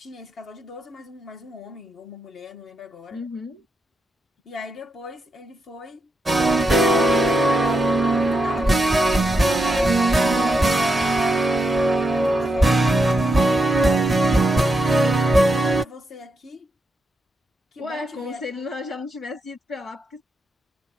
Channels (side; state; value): both; normal; correlation 0.83